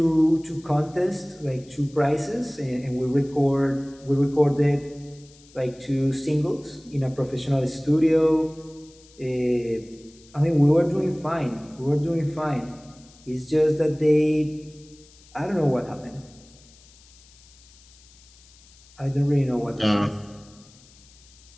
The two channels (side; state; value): left; noise; hiss, 26 dB below the sound